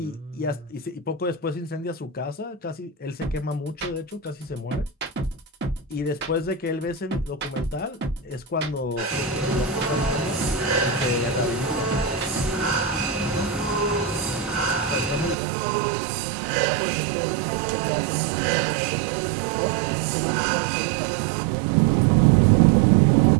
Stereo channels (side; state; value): left; drops out; at 15.4 s